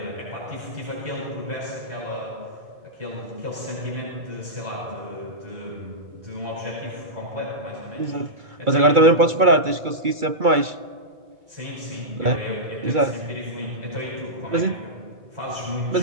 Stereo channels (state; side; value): late; left; 2.3 ms